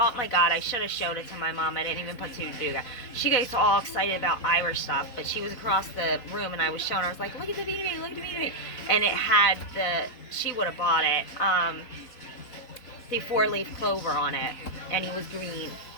my God, I should have showed it to my mom. I didn't even put two together. She gets all excited about Irish stuff, but she was across the room and I was showing her. I was like, look at the Beanie Baby, look at the Beanie Baby. And it had she would have bought it, the 4-leaf clover on it. And he was green.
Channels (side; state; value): right; late; 4.0 ms